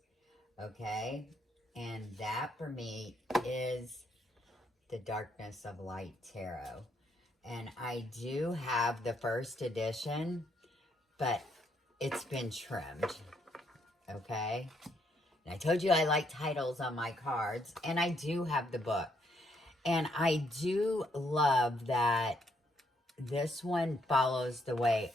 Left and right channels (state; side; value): normal; both; correlation 0.73